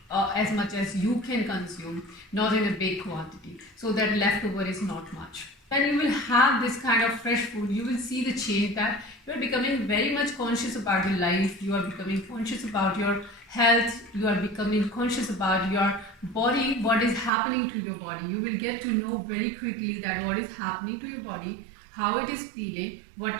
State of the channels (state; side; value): drops out; left; at 17.3 s